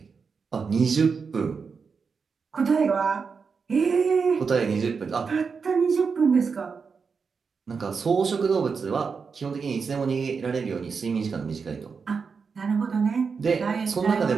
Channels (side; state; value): left; quieter; 5.4 dB